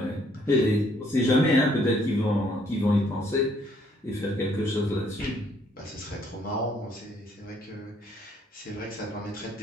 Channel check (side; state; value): both; normal; correlation 0.66